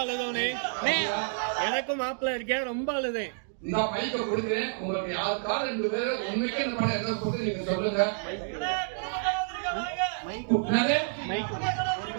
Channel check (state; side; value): silent; left; digital silence